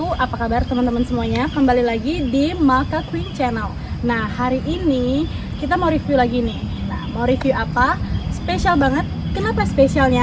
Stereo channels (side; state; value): both; identical; correlation 1.00